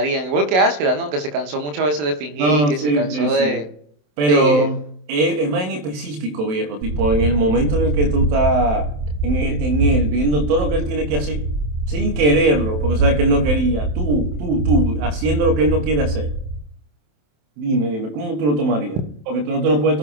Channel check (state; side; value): late; left; 27 ms